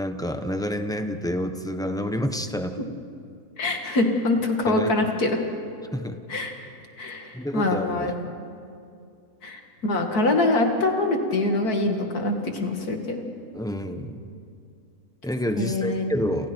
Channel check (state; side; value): normal; both; correlation 0.20